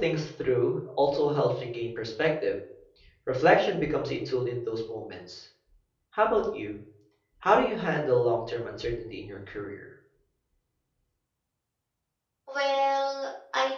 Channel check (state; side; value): identical; both; correlation 1.00